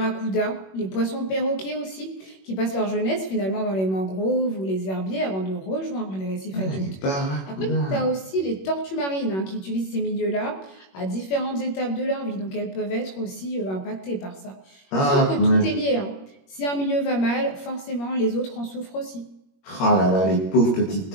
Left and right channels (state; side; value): late; right; 21 ms